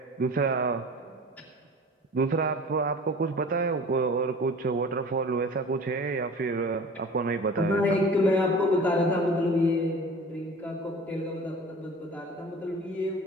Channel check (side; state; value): both; normal; correlation 0.41